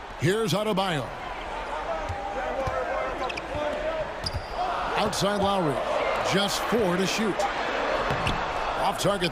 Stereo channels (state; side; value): identical; both; correlation 1.00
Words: Here's Adebayo. Outside Lowry. Just 4 to shoot. Off